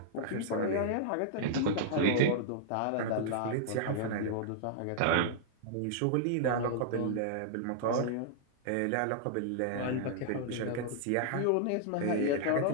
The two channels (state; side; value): different; both; correlation -0.01